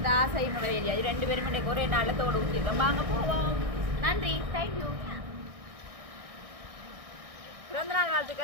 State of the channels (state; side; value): late; left; 1.6 ms